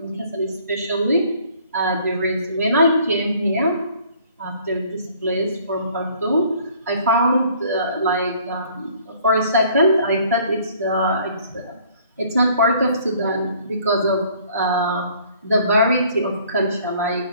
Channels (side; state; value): both; inverted; correlation -0.57